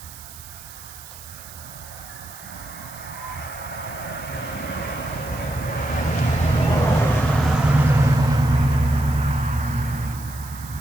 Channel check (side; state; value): right; noise; hiss, 16 dB below the sound